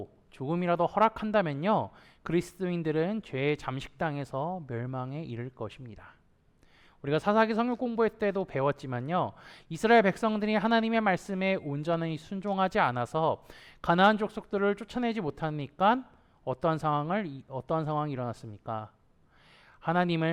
조금이라도 허락한다면요, 그리스도인들은 죄의 잠식당에서 멸망에 이를 것입니다. 우리가 사사기 성경 공부할 때도 배웠지만요, 이스라엘 백성들이 하나님의 말씀에 온전히 순종하지 않아서 가나안 족속들을 쫓아내지 못하니까 어떠한 상황이 일어났습니까?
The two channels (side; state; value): both; identical; correlation 1.00